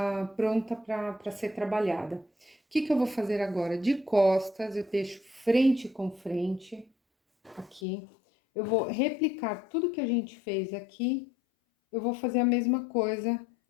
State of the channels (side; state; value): right; drops out; at 7.8 s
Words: pronta para ser trabalhada. O que eu vou fazer agora? De costas, eu deixo frente com frente, aqui. Eu vou replicar tudo que a gente fez aqui, eu vou fazer a mesma coisa